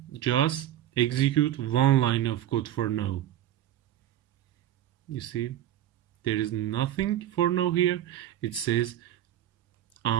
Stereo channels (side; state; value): left; quieter; 12.1 dB